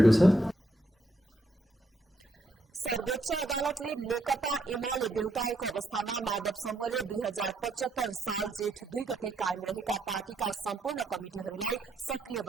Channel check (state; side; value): normal; both; correlation 0.76